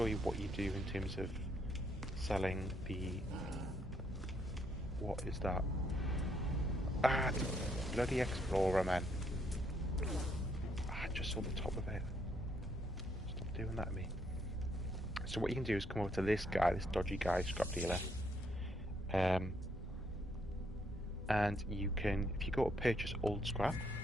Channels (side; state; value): both; normal; correlation 0.72